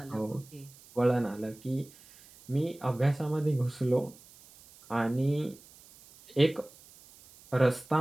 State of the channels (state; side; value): noise; right; hiss, 24 dB below the sound